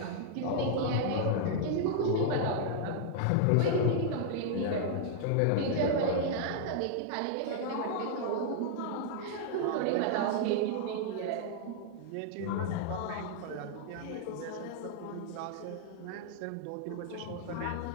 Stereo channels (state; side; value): different; both; correlation -0.01